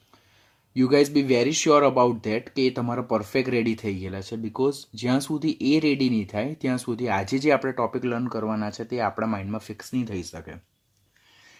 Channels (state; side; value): identical; both; correlation 1.00